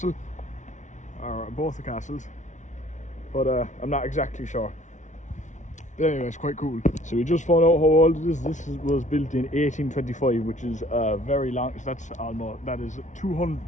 or both the castles, but I'm not exactly sure. But anyway, it's quite cool. So we just found out how old it is. This was built in 1825, which is very long. So that is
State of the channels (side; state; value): right; late; 0.36 ms